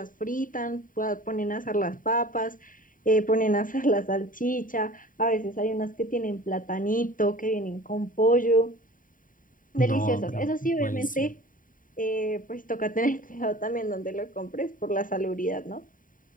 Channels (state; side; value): late; right; 0.39 ms